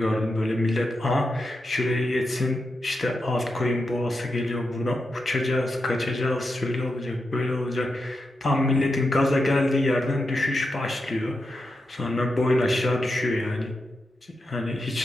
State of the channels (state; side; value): normal; both; correlation 0.87